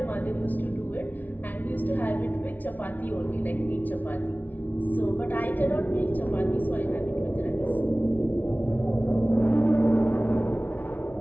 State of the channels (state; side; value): late; right; 0.078 ms